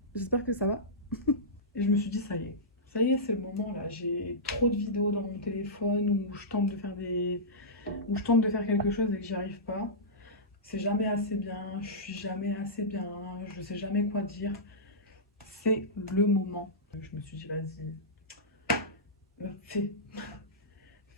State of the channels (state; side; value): normal; both; correlation -0.15